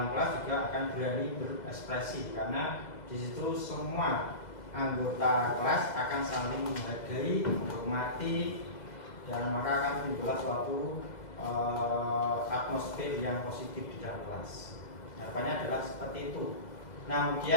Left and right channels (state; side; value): late; right; 2.0 ms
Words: kelas juga akan berani berekspresi, karena di situ semua anggota kelas akan saling menghargai, menghormati, dan maka akan timbul suatu atmosfer yang positif di dalam kelas. Harapannya adalah seperti itu. Nah,